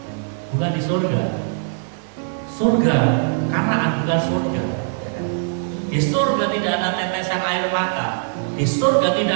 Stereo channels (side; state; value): left; silent; digital silence